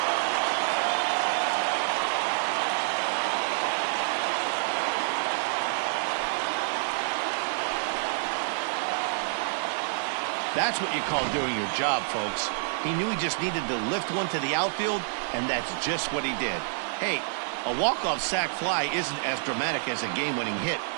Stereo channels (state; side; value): silent; left; 59 dB below the other